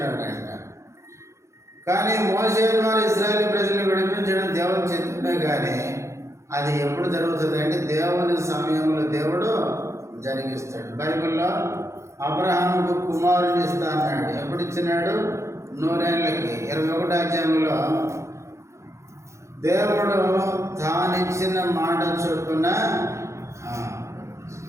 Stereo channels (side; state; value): left; late; 0.14 ms